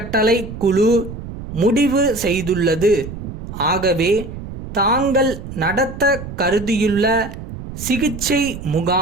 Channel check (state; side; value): noise; right; rumble, 10 dB below the sound